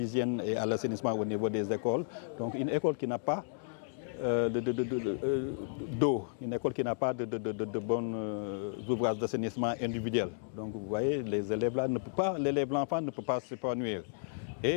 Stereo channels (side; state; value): right; silent; digital silence